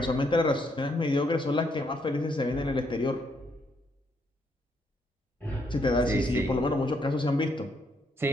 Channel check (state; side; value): normal; both; correlation 0.73